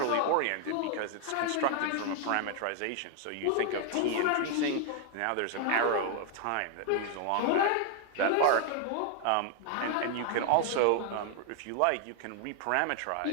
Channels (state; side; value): different; both; correlation 0.00